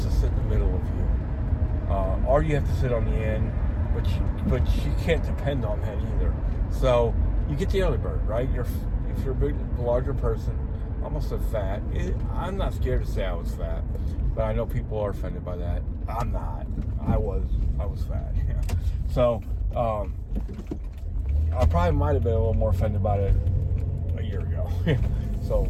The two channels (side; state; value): both; identical; correlation 1.00